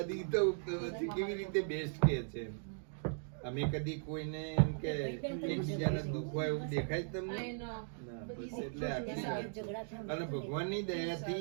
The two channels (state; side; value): silent; left; digital silence